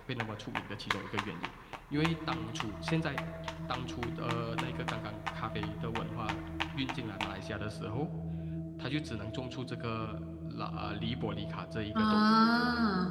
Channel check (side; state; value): both; identical; correlation 1.00